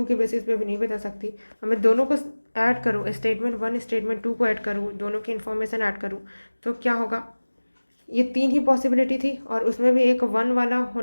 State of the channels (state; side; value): inverted; both; correlation -1.00